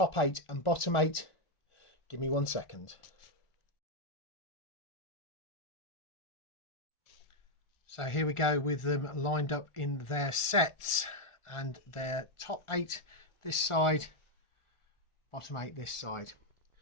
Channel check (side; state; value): right; late; 1.4 ms